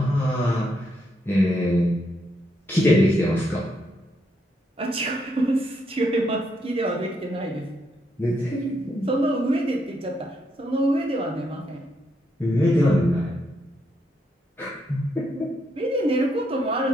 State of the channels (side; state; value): both; normal; correlation 0.78